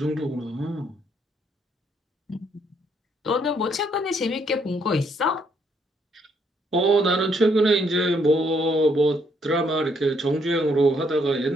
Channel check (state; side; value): normal; both; correlation 0.71